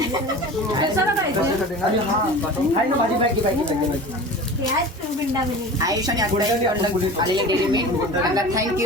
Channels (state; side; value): normal; both; correlation 0.36